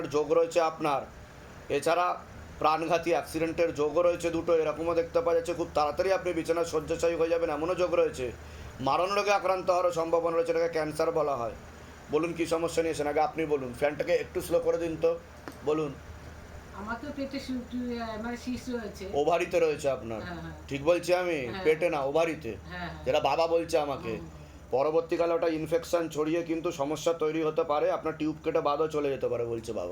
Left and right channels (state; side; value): identical; both; correlation 1.00